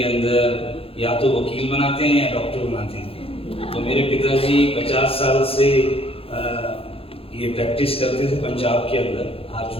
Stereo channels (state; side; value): late; right; 0.27 ms